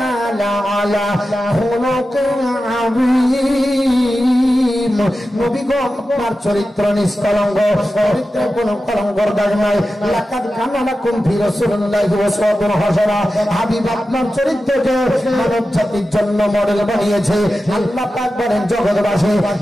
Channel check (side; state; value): both; normal; correlation 0.93